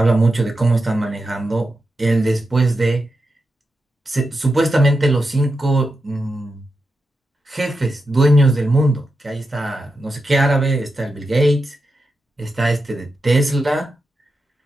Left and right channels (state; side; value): normal; both; correlation 0.88